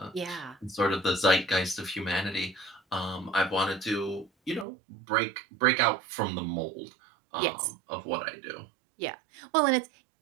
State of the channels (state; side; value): drops out; left; at 4.7 s